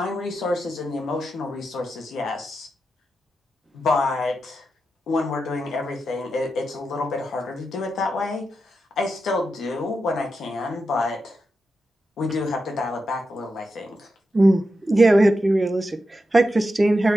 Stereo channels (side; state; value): both; normal; correlation 0.88